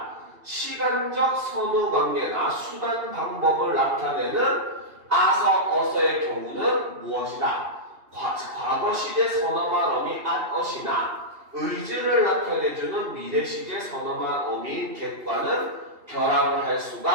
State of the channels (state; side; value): late; left; 2.7 ms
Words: 시간적 선후관계나 수단 방법을 나타내는 아서 어서의 경우는 무엇이다? 과거 시제 선어말 어미 앗엇이나 의지를 나타내주는 미래 시제 선어말 어미인 겟과는 결합을 할